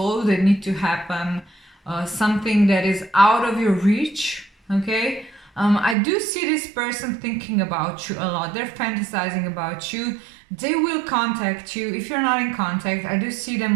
that need to happen, something that is out of your reach, okay? I do see this person thinking about you a lot. They're fantasizing about you. They will contact you. If you're not in contact, I do see them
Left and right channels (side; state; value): left; drops out; at 6.0 s